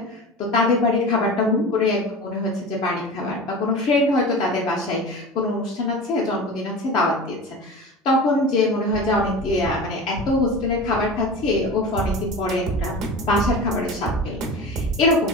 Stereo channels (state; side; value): normal; both; correlation 0.32